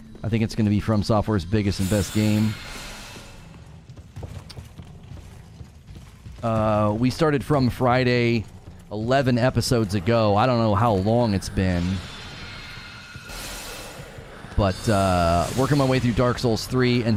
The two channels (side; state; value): both; identical; correlation 1.00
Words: I think it's going to be From Software's biggest and best game. We started From Friday 11 episodes ago. I don't know how long it's been. But working my way through Dark Souls 3, and